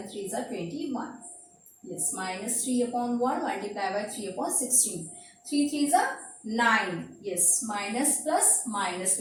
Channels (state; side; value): identical; both; correlation 1.00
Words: 3s are 21. Yes, minus 3 upon 1 multiplied by 3 upon 16. 3 3s are 9. Yes, minus plus minus